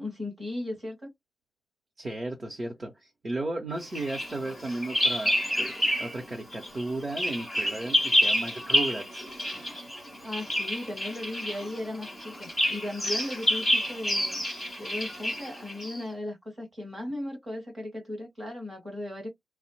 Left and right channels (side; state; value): both; normal; correlation 0.92